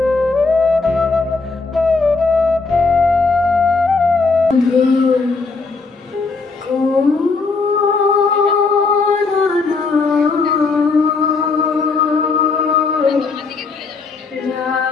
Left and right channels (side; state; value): right; quieter; 4.2 dB